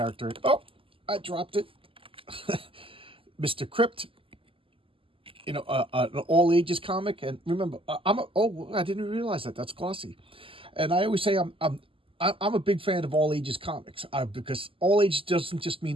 Oh, I dropped it. Mr. Crypt, an all ages comic. And remember, I didn't realize that. That's glossy. And I always say I'm a big fan of all ages comics because all ages doesn't just mean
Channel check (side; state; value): left; late; 0.26 ms